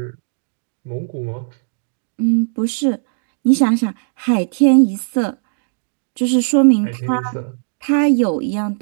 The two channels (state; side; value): silent; left; digital silence